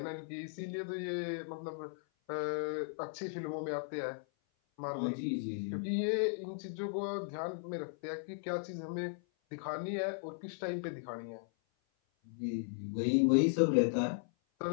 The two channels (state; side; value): silent; right; 53 dB below the other